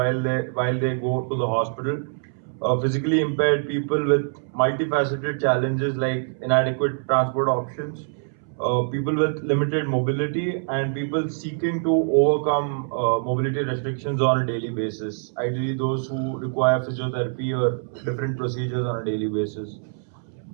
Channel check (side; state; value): left; silent; 62 dB below the other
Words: they go to the hospital. Physically impaired people with multifaceted challenges like inadequate transport options, people with limited mobility, and people seeking to overcome mobility restrictions on a daily basis. Ideally, those who require physiotherapy or different procedures on a daily basis.